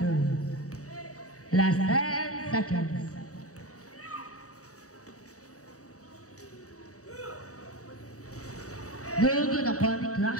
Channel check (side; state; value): right; late; 0.66 ms